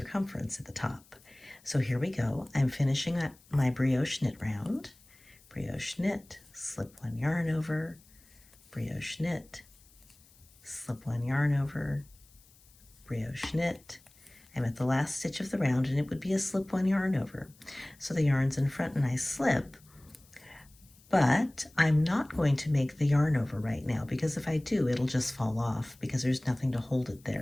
at the top. So here we go. I'm finishing up my brioche knit round. Brioche knit, slip one yarn over, brioche knit, slip one yarn over, brioche knit. I'm at the last stitch of the round and it would be a slip one yarn over. So the yarn's in front and I slip, but I'm not going to make the yarn over right now because if I do, it'll just fall off because there's nothing to hold it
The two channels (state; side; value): noise; left; hiss, 28 dB below the sound